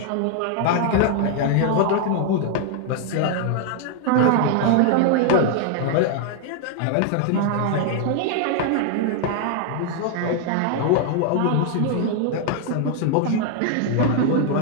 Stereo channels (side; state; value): both; different; correlation 0.00